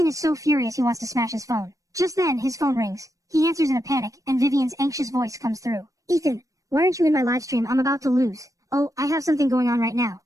is so furious he wants to smash his phone. Just then, his phone rings. He answers in a panic, and Vivian's anxious voice comes through. Ethan, why aren't you in my livestream? I'm about to lose. Oh, I have something going on right now.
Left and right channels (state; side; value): late; left; 0.16 ms